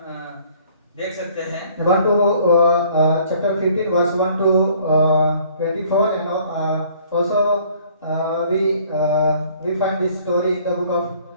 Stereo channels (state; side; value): inverted; both; correlation -0.57